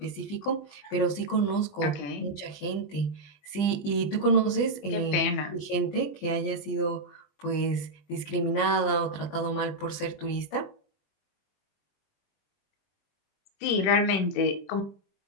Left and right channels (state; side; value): late; right; 20 ms